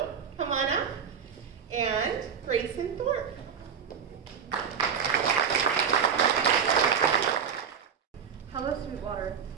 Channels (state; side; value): quieter; left; 7.1 dB